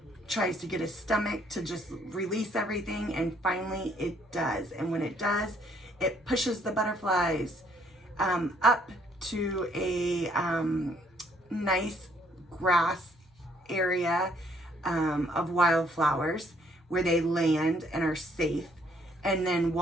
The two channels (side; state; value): both; normal; correlation 0.66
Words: tries to get his stomach to just release everything, and finally it does. And when it does, it pushes the butterflies up to a nice grass area of wildflowers where they land and are safe. And then